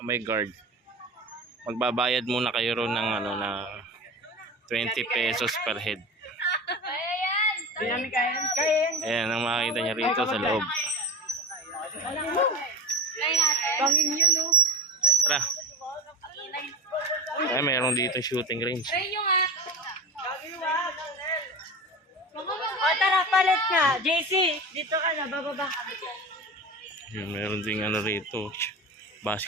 may guard. Magbabayad muna kayo ron ng na 20 pesos per head. Ayan ang makikita nyo rito sa loob. Tara. Ay, mayroon dito shooting range. Tara, palit ka. JC, dito ka na, bababa. Ayan, mayroon ding rito,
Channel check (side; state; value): both; normal; correlation 0.27